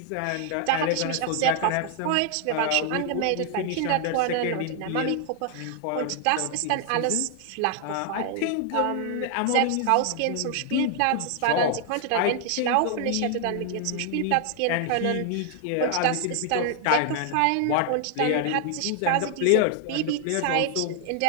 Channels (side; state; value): both; different; correlation 0.00